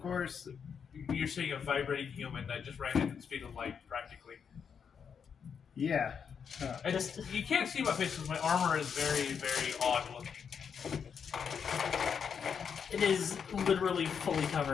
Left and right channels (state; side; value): quieter; right; 6.9 dB